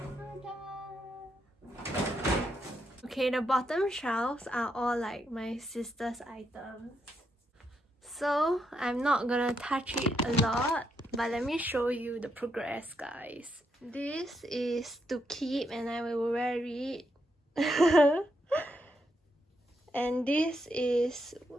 Okay, the bottom shelves are all like my sister's items, so I'm not gonna touch it a lot, but let me show you the progress, guys. This is to keep and I will wear it. And this is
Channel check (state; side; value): normal; both; correlation 0.80